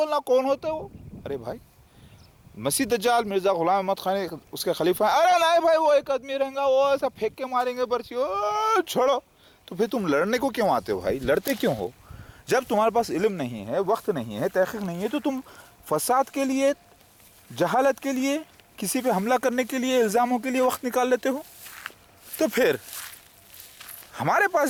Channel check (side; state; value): both; identical; correlation 1.00